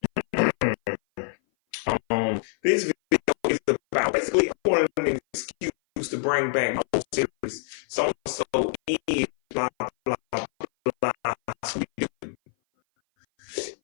This video is about basically one of an excuse to bring back my whole series. So is blah blah blah blah. Sweet dude.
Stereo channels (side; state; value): right; silent; 58 dB below the other